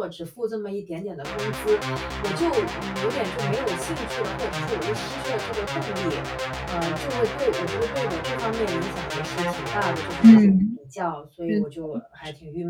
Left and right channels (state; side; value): identical; both; correlation 1.00